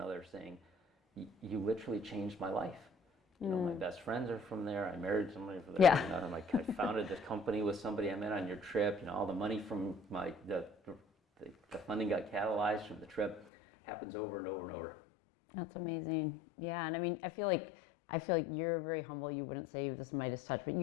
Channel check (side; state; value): right; drops out; at 13.4 s